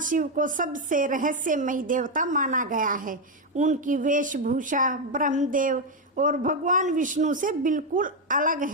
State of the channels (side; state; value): both; normal; correlation 0.05